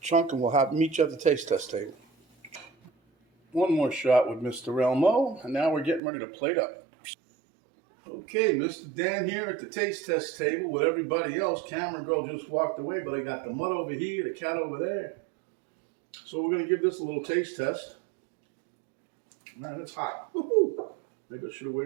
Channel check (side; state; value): left; drops out; at 6.0 s